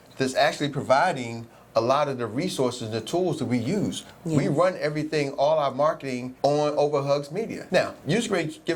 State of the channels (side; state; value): both; identical; correlation 1.00